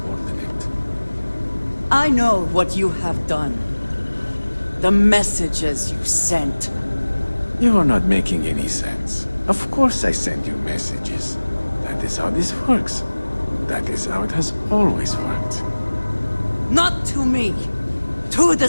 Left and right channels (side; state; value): both; inverted; correlation -1.00